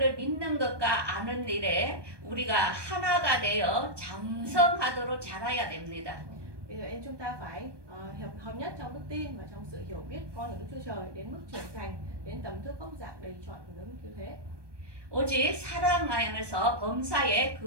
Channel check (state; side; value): late; left; 1.2 ms